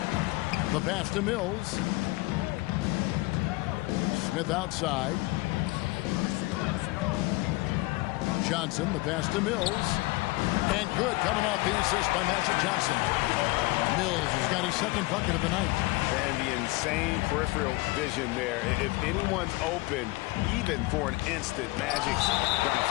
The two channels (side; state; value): right; quieter; 22.3 dB